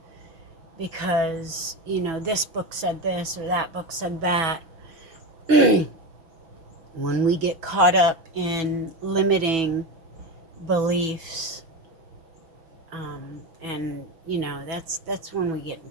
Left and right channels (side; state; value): left; late; 6.1 ms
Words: because, this book said this or that book said that. When we get caught up in limiting beliefs, and that's when we get in